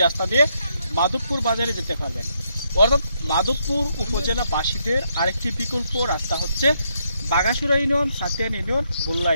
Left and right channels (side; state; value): both; inverted; correlation -0.76